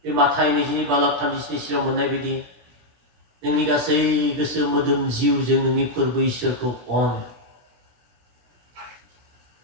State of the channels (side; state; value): left; late; 17 ms